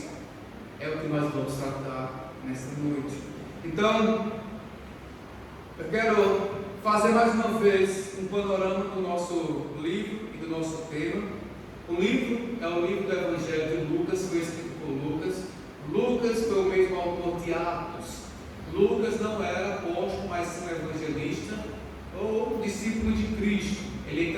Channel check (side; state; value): both; identical; correlation 1.00